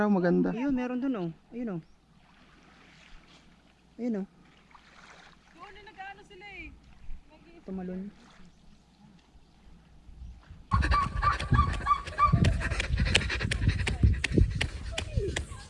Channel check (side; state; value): both; identical; correlation 1.00